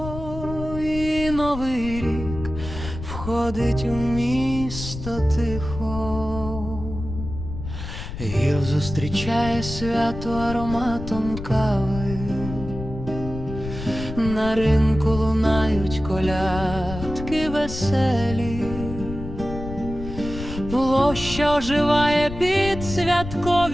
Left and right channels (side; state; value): left; noise; rumble, 9 dB below the sound